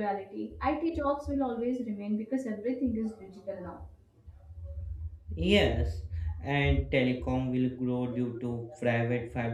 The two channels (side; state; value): both; identical; correlation 1.00